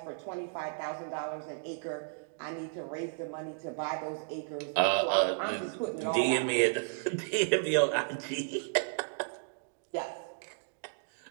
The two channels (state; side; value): silent; left; digital silence